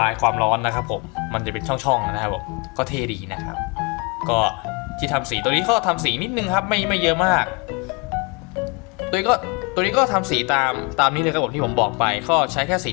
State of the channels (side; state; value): right; quieter; 30.2 dB